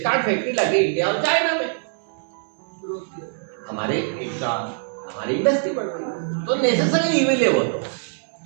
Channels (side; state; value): left; silent; 63 dB below the other